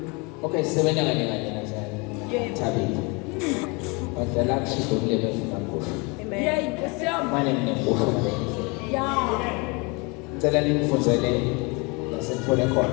okay sebenza kanye nazali. Tabiti. Badala kushido kulebe funakusho. Yey, Nkosi yami. Mane mnekusho mabenzi. Ya. Ngicela ningifundele lasethole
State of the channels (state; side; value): quieter; right; 29.1 dB